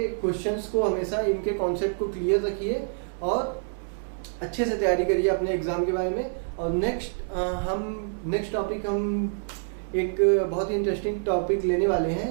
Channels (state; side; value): silent; left; digital silence